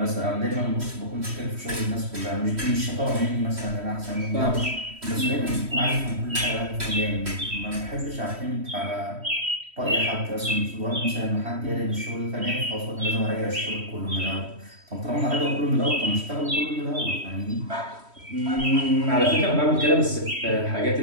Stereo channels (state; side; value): late; left; 3.1 ms